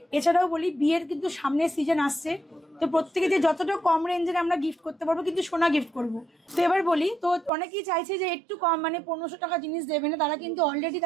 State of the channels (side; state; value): left; drops out; at 7.5 s